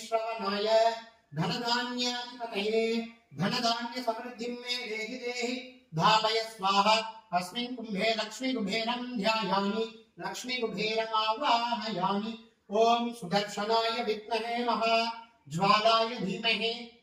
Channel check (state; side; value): identical; both; correlation 1.00